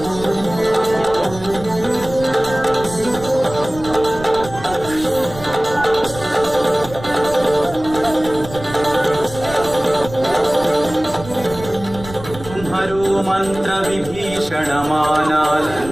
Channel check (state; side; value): noise; right; rumble, 14 dB below the sound